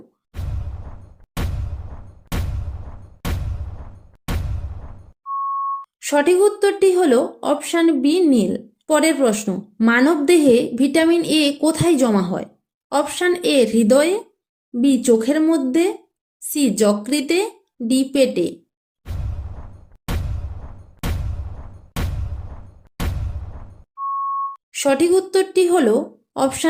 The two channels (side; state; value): both; identical; correlation 1.00